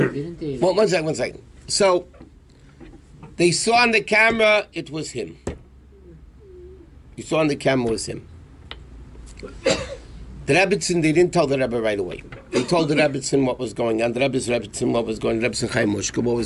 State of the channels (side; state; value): both; identical; correlation 1.00